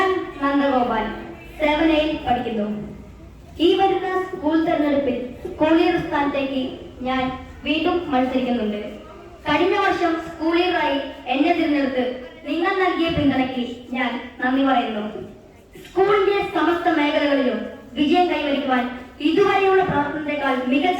നന്ദഗോപാൽ 7A പഠിക്കുന്നു. ഈ വരുന്ന സ്കൂൾ തെരഞ്ഞെടുപ്പിൽ സ്കൂൾ ലീഡർ സ്ഥാനത്തേക്ക് ഞാൻ വീണ്ടും മത്സരിക്കുന്നുണ്ട്. കഴിഞ്ഞ വർഷം സ്കൂൾ ലീഡറായി എന്നെ തിരഞ്ഞെടുത്ത് നിങ്ങൾ നൽകിയ പിന്തുണയ്ക്ക് ഞാൻ നന്ദി പറയുന്നു. സ്കൂളിന്റെ സമസ്ത മേഖലകളിലും വിജയം കൈവരിക്കുവാൻ ഇതുവരെയുള്ള പ്രവർത്തനത്തെക്കാൾ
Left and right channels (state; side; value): identical; both; correlation 1.00